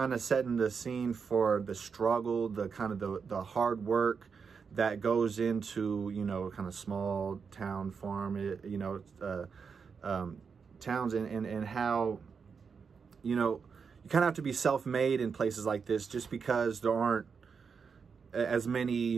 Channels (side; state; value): left; quieter; 5.8 dB